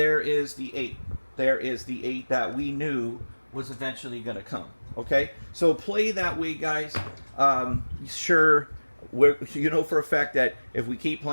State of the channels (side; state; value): both; inverted; correlation -1.00